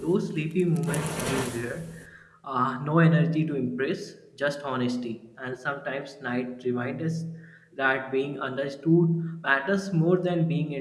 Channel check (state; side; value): identical; both; correlation 1.00